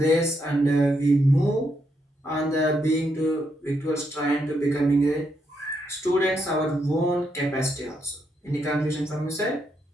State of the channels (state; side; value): normal; both; correlation 0.79